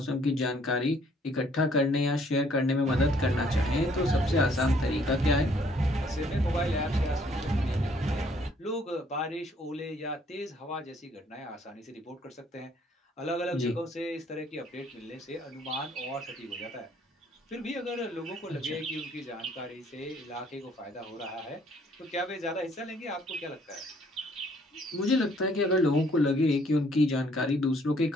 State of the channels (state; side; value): normal; both; correlation 0.63